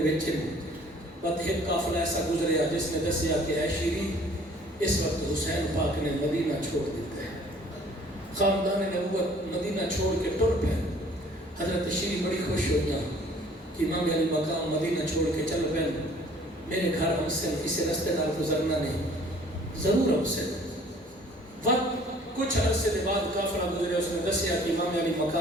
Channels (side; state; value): both; normal; correlation 0.54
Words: بعد ایک قافلہ ایسا گزریا جس نے دسیا کہ اے شیری اس وقت حسین پاک نے مدینہ چھوڑ دیتا ہے، خاندان نبوت مدینہ چھوڑ کے ٹر پہ۔ حضرت شیری بڑی خوش ہو گیا کہ امام علی مقام مدینہ چھوڑ کے چل پہ، میرے گھر ہم سے کسی رستے دار گزرنا نہیں، ضرور ہم سے وقت کچھ عرصے کے بعد قافلہ گزرے، اس نے دسیا کہ امام علی